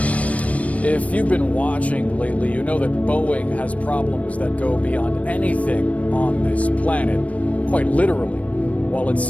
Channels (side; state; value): right; late; 0.066 ms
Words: If you've been watching lately, you know that Boeing has problems that go beyond anything on this planet, quite literally. While its